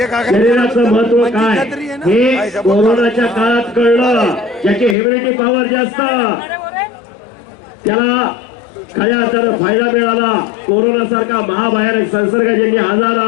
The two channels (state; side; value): drops out; right; at 5.0 s